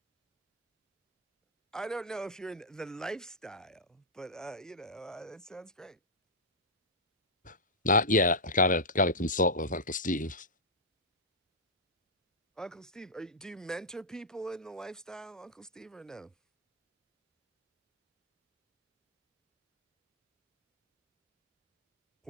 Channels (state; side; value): normal; both; correlation -0.09